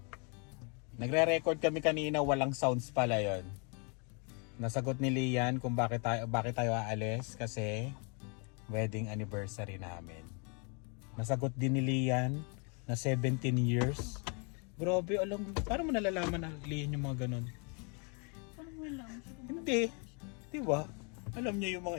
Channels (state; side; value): quieter; right; 36.2 dB